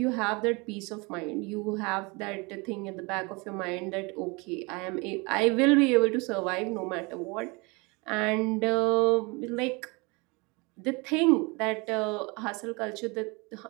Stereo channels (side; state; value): left; quieter; 27.8 dB